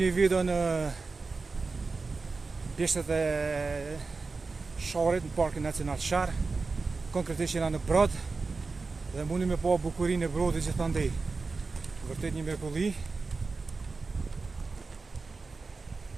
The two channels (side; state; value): left; quieter; 4.1 dB